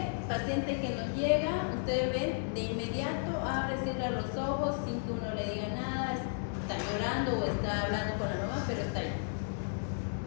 paciente que nos llega, ustedes ven, de inmediato abre, cierra los ojos sin que uno le diga nada, está llorando o está hablando con la mamá, pero está ahí.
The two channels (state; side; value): silent; right; 55 dB below the other